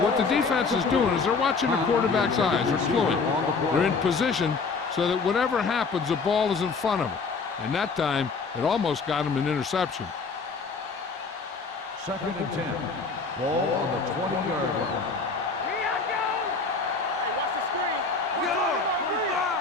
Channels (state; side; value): quieter; right; 4.5 dB